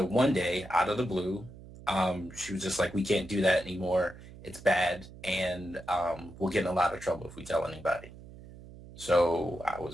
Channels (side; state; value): right; noise; hum, 17 dB below the sound